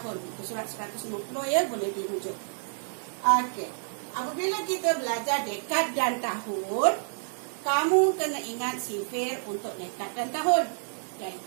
Muka surat 150 ya, boleh dirujuk. Okey, apabila kita belajar dekad dan tahun, kamu kena ingat sifir untuk dekad dan tahun,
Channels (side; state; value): left; silent; digital silence